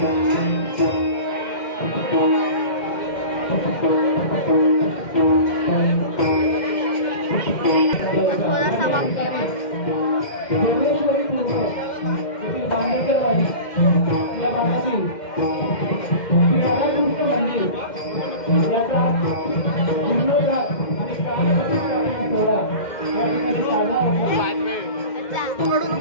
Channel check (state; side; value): late; right; 2.1 ms